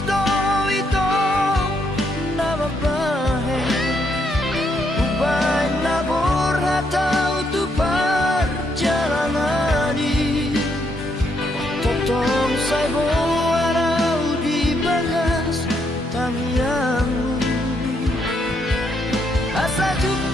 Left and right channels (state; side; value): normal; both; correlation 0.75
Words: do ito nama bahe ubay nabor hatau tu perjalanani totong say warau di bagas tangiangmu asa